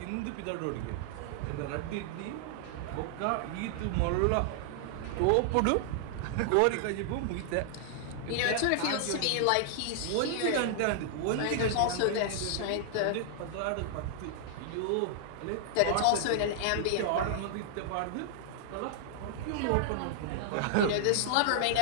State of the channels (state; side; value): different; both; correlation -0.01